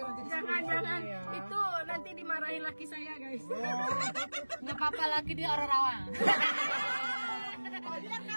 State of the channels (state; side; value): inverted; both; correlation -1.00